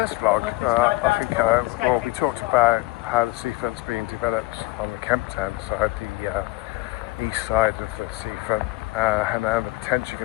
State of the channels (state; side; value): quieter; right; 20.6 dB